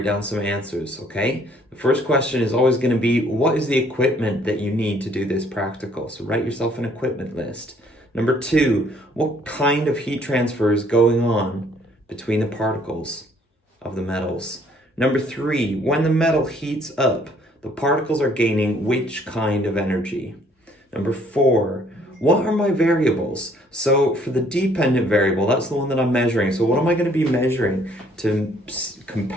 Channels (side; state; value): both; normal; correlation 0.62